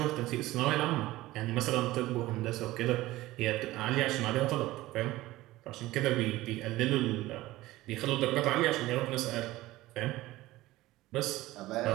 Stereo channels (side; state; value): left; quieter; 17.5 dB